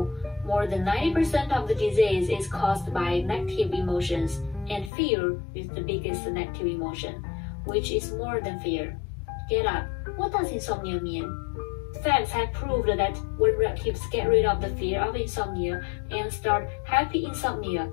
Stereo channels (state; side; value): drops out; right; at 4.9 s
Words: more than 90% of the disease is caused by negative emotions, and fear is the biggest negative emotion, which is more than fear. Get up. What does insomnia mean? Facts have proved that when relatives get rid of the fear of insomnia and start happy insomnia,